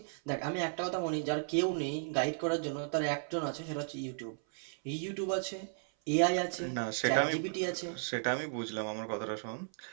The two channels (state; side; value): silent; left; 55 dB below the other